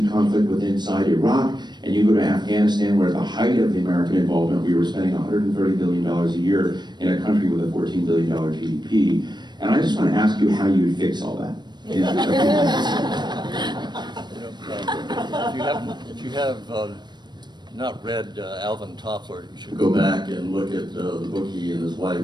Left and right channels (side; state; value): left; late; 0.21 ms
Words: conflict within inside Iraq, and you go to Afghanistan, where at the height of the American involvement, we were spending $130 billion a year in a country with a $14 billion GDP. And I just want to ask you how you would fix all that. If you have not read Alvin Toffler, you should go back and look at the book he and his